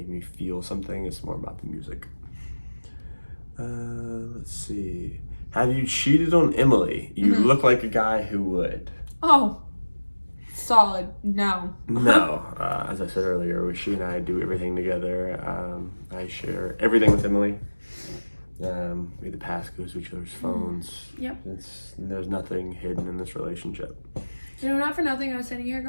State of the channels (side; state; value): both; inverted; correlation -1.00